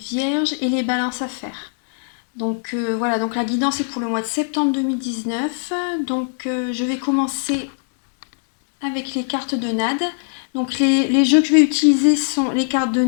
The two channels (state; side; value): silent; right; digital silence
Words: et les balances à faire. Donc voilà, donc la guidance est pour le mois de septembre 2019. Donc je vais commencer avec les cartes de Nade. Donc les jeux que je vais utiliser sont les cartes de